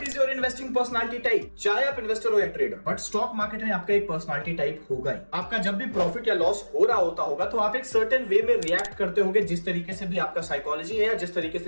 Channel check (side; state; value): both; inverted; correlation -1.00